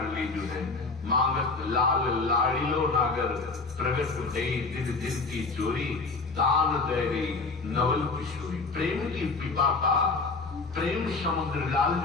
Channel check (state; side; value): quieter; right; 4.0 dB